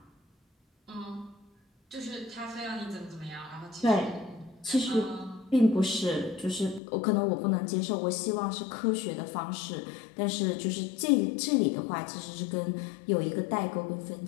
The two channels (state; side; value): drops out; right; at 6.8 s